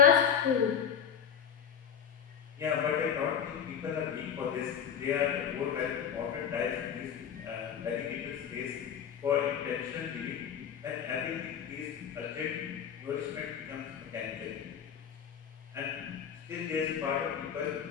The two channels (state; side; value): quieter; right; 8.0 dB